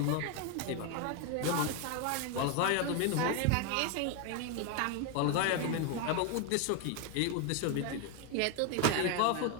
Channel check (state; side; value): different; both; correlation 0.01